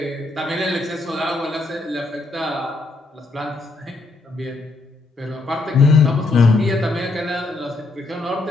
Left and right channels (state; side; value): quieter; right; 3.2 dB